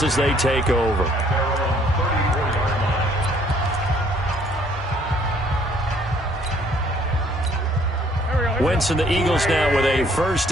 as they take over. Wentz and the Eagles now with a 1st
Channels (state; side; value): normal; both; correlation 0.62